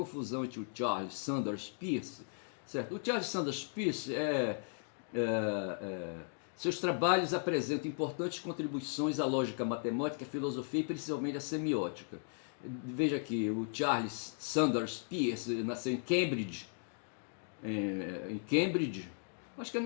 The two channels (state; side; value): silent; right; 53 dB below the other